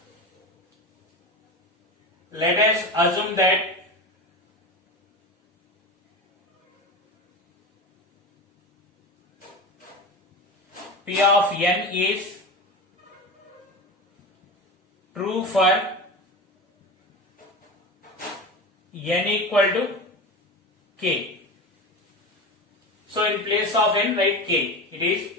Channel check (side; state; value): both; normal; correlation 0.26